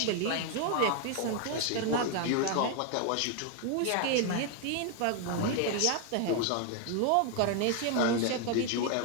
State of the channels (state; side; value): different; both; correlation 0.01